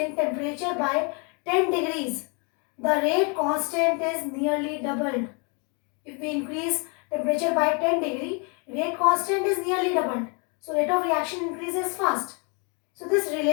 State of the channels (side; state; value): right; quieter; 34.7 dB